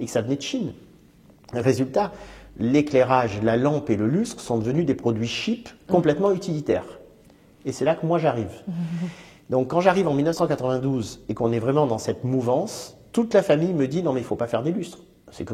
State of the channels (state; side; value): identical; both; correlation 1.00